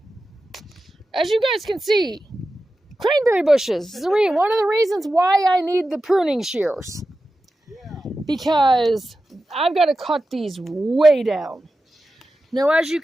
you guys can see, cranberry bushes. One of the reasons why I need the pruning shears. Yeah. Because I've got to cut these way down. Now, as you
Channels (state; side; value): normal; both; correlation 0.92